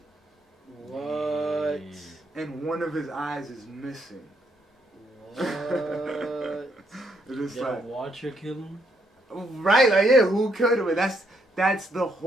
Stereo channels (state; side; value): normal; both; correlation 0.74